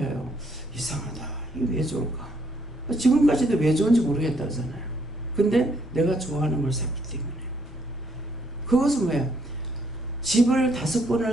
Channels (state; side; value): normal; both; correlation 0.70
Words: 이상하다. 이게 왜 좋을까? 지금까지도 왜 좋은지 모르겠다 하잖아요. 근데 내가 좋아하는 걸 샀기 때문에. 그것은 뭐예요? 집을